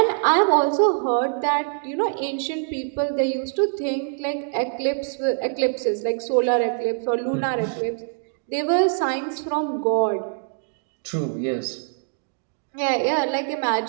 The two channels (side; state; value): left; silent; digital silence